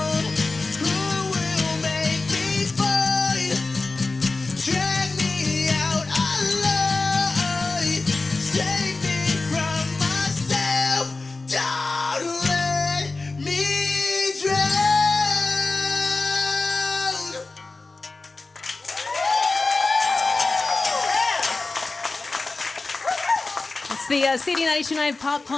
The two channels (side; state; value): right; quieter; 3.5 dB